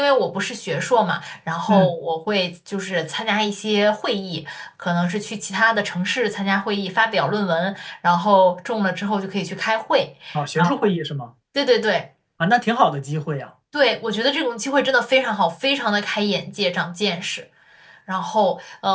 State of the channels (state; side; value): identical; both; correlation 1.00